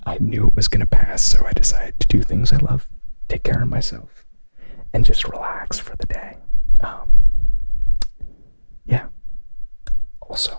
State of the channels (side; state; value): both; inverted; correlation -1.00